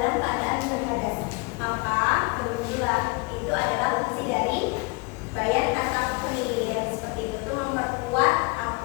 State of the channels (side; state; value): right; quieter; 27.7 dB